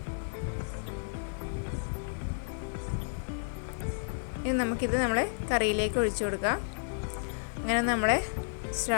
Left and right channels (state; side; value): silent; right; digital silence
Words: ഇനി നമുക്കിത് നമ്മളെ കറിയിലേക്ക് ഒഴിച്ചു കൊടുക്കാം. അങ്ങനെ നമ്മളെ